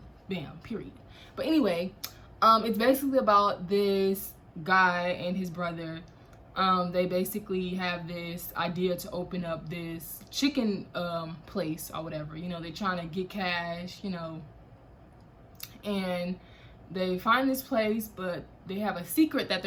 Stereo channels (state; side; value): identical; both; correlation 1.00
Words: Bam, period. But anyway, it's basically about this guy and his brother. They basically have this idea to open up this chicken place or whatever. You know, they're trying to get cash, you know, and they find this place, but they have a secret that